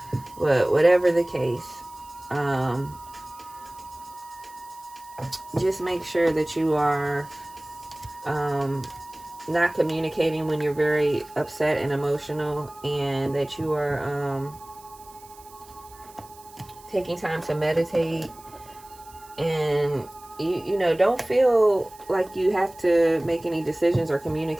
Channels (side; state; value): right; noise; hiss, 23 dB below the sound